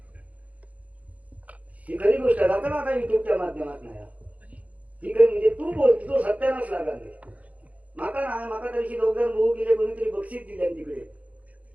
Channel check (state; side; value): late; left; 0.069 ms